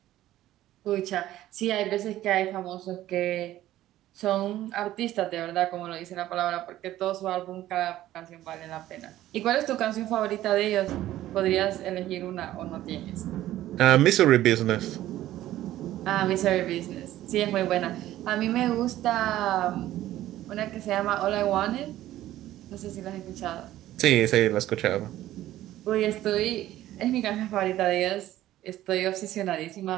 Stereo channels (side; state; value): left; quieter; 14.1 dB